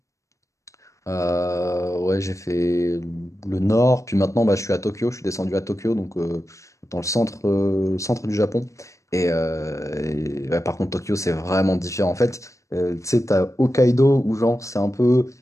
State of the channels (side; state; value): right; late; 0.15 ms